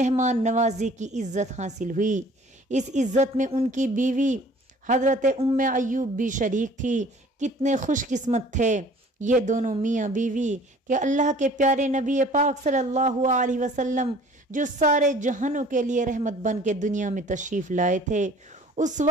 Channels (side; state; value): both; normal; correlation 0.51